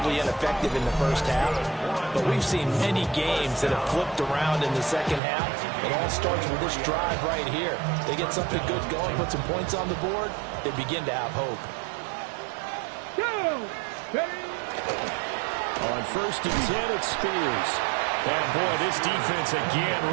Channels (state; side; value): drops out; left; at 5.2 s